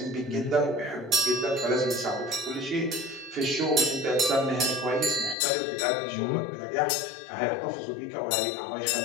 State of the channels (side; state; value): right; drops out; at 5.4 s